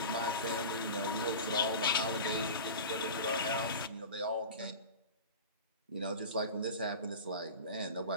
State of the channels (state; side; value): inverted; both; correlation -0.32